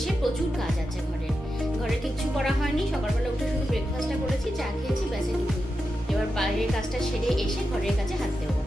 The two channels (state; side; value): normal; both; correlation 0.89